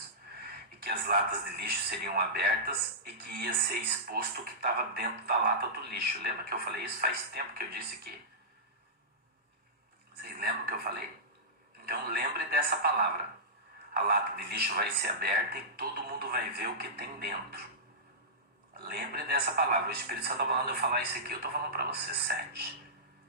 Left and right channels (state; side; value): normal; both; correlation -0.15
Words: E que as latas de lixo seriam abertas e que ia ser exposto o que estava dentro da lata do lixo. Lembra que eu falei isso? Faz tempo que eu disse aqui. Vocês lembram que eu falei? Então lembre dessa palavra. A lata de lixo vai ser aberta e todo mundo vai ver o que tem dentro. Lembre dessa palavra. O Espírito Santo está falando eu falar isso aqui, eu estou falando para você. 7.